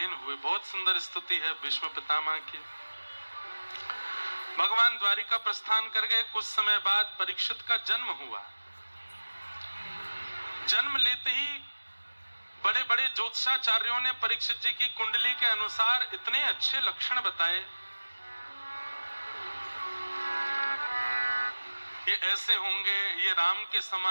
हुए। बहुत सुंदर स्तुति है भीष्म पितामह की। भगवान द्वारिका प्रस्थान कर गए। कुछ समय बाद परीक्षित का जन्म हुआ। जन्म लेते ही बड़े बड़े ज्योतिषाचार्यों ने परीक्षित जी की कुंडली के अनुसार इतने अच्छे लक्षण बताए, ये ऐसे होंगे, ये राम के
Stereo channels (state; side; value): inverted; both; correlation -1.00